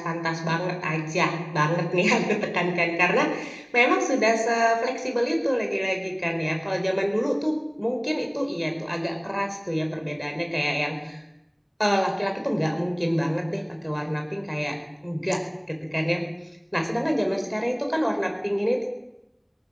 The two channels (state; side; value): identical; both; correlation 1.00